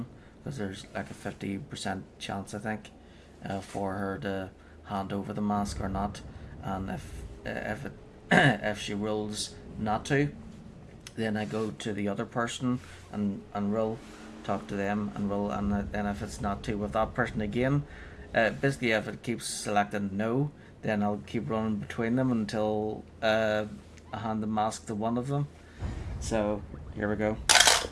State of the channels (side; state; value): both; identical; correlation 1.00